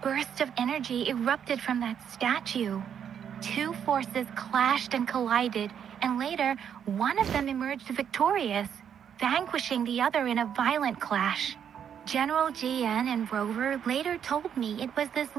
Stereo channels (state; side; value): quieter; left; 8.4 dB